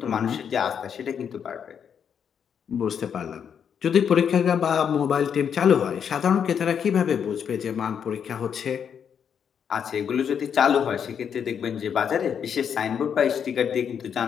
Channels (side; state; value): right; quieter; 7.7 dB